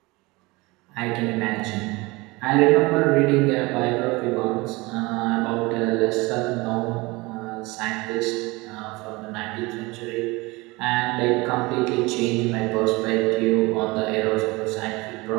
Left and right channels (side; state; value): left; quieter; 23.4 dB